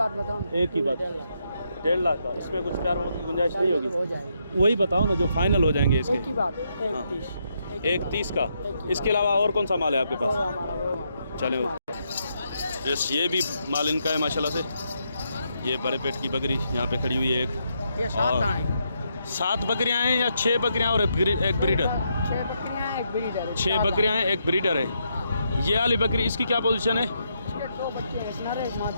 बताओ। एक ही बात, 1.5 लाख का। इसमें कुछ प्यार मोहब्बत की गुंजाइश नहीं होगी? हो जाएगी। वही बताओ ना जो फाइनल हो जाएंगे इसके। एक ही बात, 1.30 का। इसके अलावा और कौन सा माल है आपके पास? चलो यस, ये भी माल इनका है माशाल्लाह से। ये बड़े पेट की बकरी यहाँ पे खड़ी हुई है एक। ये 7 बकरियाँ हैं या 6 बकरियाँ और एक ब्रीडर? 6 बकरियाँ हैं, एक ब्रीडर है। 6 बकरियाँ हैं, एक ब्रीडर है। ये वाली बकरी इसकी क्या पोजीशन है? इसके 2 बच्चे हैं, नर है, एक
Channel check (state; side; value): inverted; both; correlation -0.79